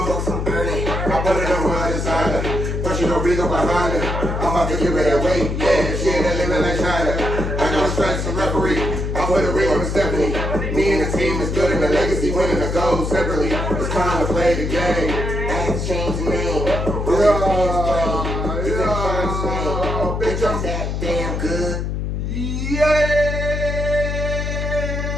books I'm burning. I put it on one side, but you don't big up behind it. I'm about to give it away, yeah, shit that living like China. I got a strike some referee, I put a ring on the Stephanie. Me and the team is good and the legacy winning the gold separately. It's time to play the game. I had to change the name. Bitch, I'm that damn good. Yeah.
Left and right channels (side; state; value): left; noise; hum, 2 dB below the sound